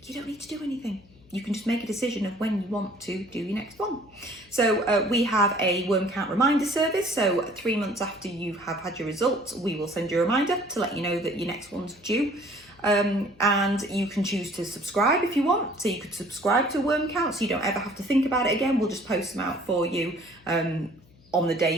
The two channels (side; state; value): left; noise; hum, 27 dB below the sound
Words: you don't need to do anything. You can just make a decision of when you want to do your next one. So we have a worm count reminder service. So 3 months after you have had your results, we will send you a reminder to let you know that your next one's due. And you can choose to subscribe if you want. So you could subscribe to a worm count so you don't ever have to think about it again. We'll just post them out for you on the